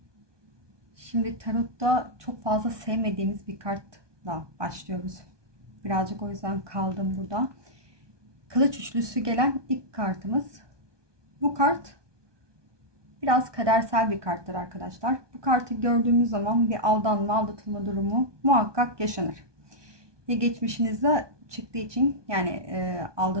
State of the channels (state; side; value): late; left; 1.2 ms